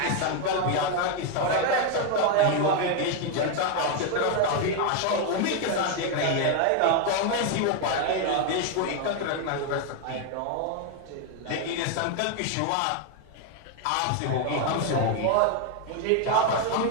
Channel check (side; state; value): both; different; correlation 0.01